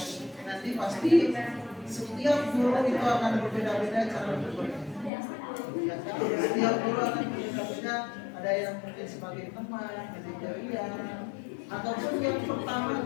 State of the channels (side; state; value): right; drops out; at 5.1 s